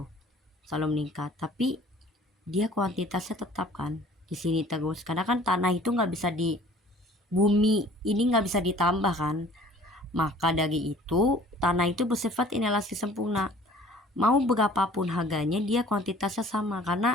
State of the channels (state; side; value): normal; both; correlation 0.51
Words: selalu meningkat, tapi dia kuantitasnya tetap kan di sini terus, karena kan tanah itu nggak bisa di bumi ini nggak bisa ditambah kan, maka dari itu tanah itu bersifat inelastis sempurna, mau berapapun harganya dia kuantitasnya sama,